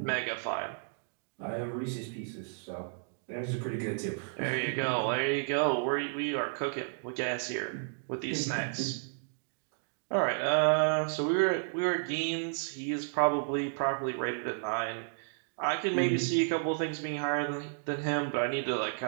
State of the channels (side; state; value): left; silent; digital silence